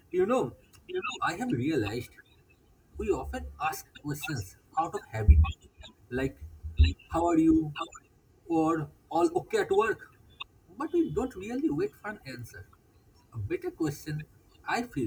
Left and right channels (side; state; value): both; identical; correlation 1.00